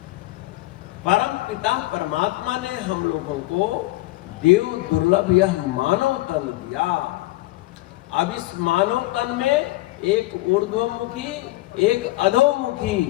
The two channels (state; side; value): quieter; right; 19.2 dB